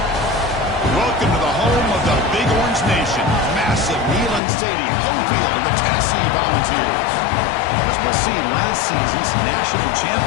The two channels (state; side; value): drops out; right; at 4.4 s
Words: Welcome to the home of the Big Orange Nation. Massive Neyland Stadium, home field of the Tennessee Volunteers. As we'll see, last season's national